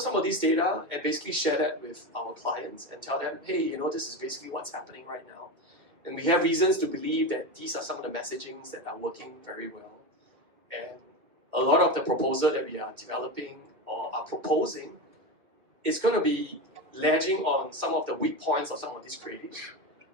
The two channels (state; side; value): late; left; 2.6 ms